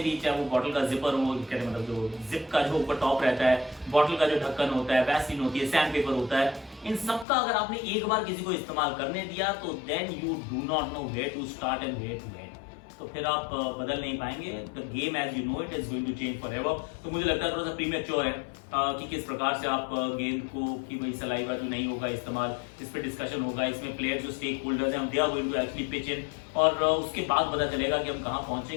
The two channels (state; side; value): drops out; right; at 7.2 s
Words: भी, चाहे वो बॉटल का जिपर हो, कहते मतलब जो जिप का जो ऊपर टॉप रहता है, बॉटल का जो ढक्कन होता है, वैसलीन होती है, सैंड पेपर होता है, इन सब का अगर आपने एक बार किसी को इस्तेमाल करने दिया तो then you do not know where to start and where to end. तो फिर आप बदल नहीं पाएंगे। The game as you know it is going to change forever. तो मुझे लगता है थोड़ा सा प्रीमेच्योर है कि किस प्रकार से आप गेंद को, कि भाई सलाइवा जो नहीं होगा इस्तेमाल, इस पर डिस्कशन होगा, इसमें प्लेयर जो स्टेक होल्डर्स हैं they are going to actually pitch in, और उसके बाद पता चलेगा कि हम कहाँ